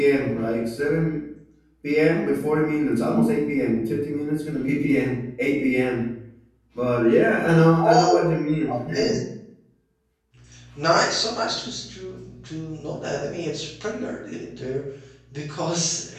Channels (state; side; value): identical; both; correlation 1.00